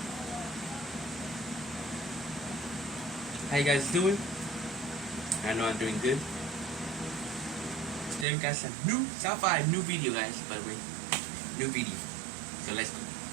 How you guys doing? I know I'm doing good. Today we got some new South 5 new video, guys, by the way. New video. So let's go.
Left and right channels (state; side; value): drops out; left; at 8.2 s